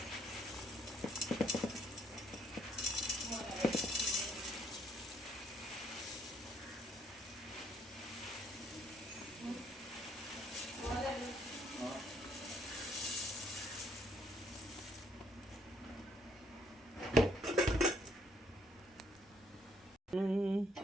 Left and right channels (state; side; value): normal; both; correlation 0.68